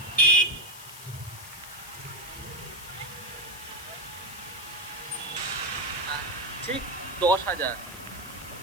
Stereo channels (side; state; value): left; noise; hiss, 14 dB below the sound